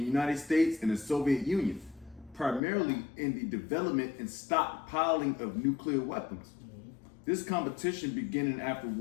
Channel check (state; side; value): drops out; right; at 2.6 s